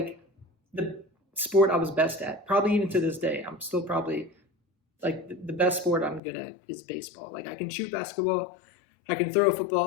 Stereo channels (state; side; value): drops out; right; at 6.2 s